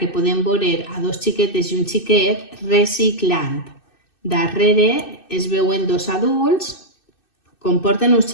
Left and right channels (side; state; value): right; late; 2.6 ms